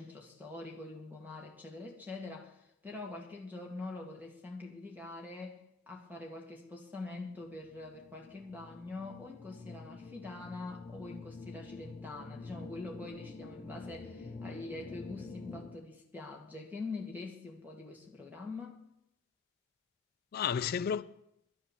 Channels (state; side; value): quieter; right; 4.2 dB